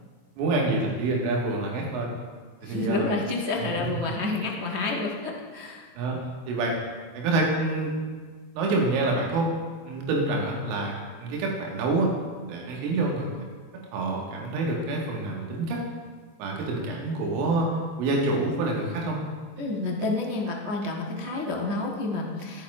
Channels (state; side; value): late; left; 24 ms